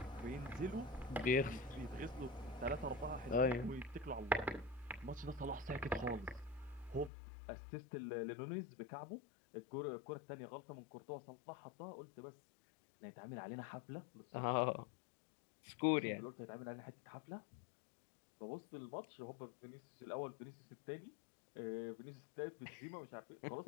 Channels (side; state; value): right; drops out; at 7.1 s